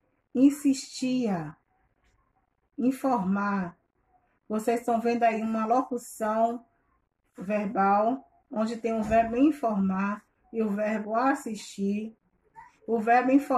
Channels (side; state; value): both; identical; correlation 1.00